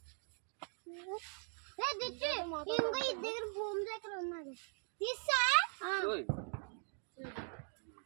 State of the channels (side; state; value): left; silent; 51 dB below the other